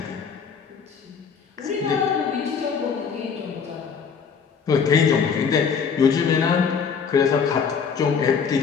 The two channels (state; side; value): quieter; right; 6.3 dB